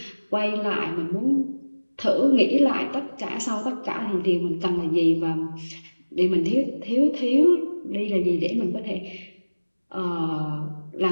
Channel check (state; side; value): inverted; both; correlation -1.00